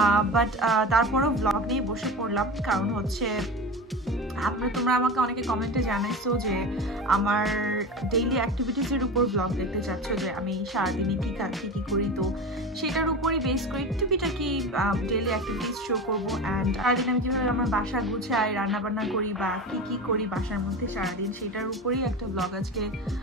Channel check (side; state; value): both; normal; correlation 0.27